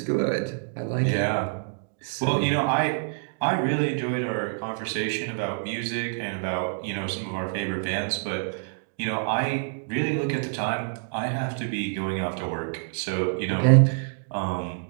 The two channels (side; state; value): left; silent; digital silence